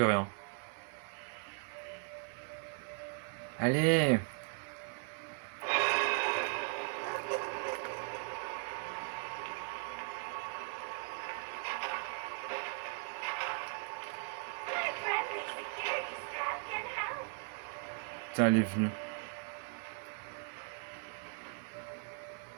hein. Allez! Putain, elle est venue.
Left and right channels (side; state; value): left; quieter; 39.0 dB